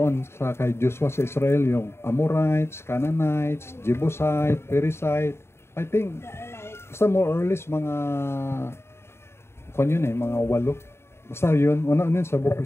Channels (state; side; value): late; right; 0.12 ms